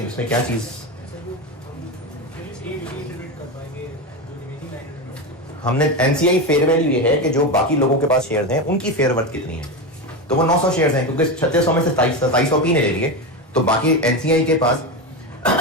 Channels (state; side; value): normal; both; correlation 0.16